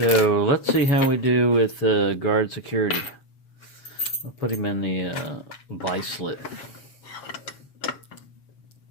let's see how we do with guard security. I'll put him in the vice slit.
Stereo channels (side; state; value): right; late; 7.4 ms